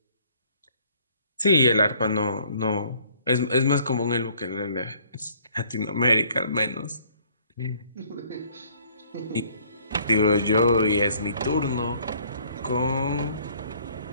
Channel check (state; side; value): inverted; both; correlation -0.60